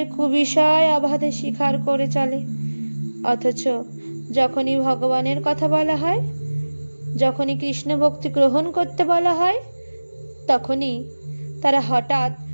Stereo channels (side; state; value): both; inverted; correlation -1.00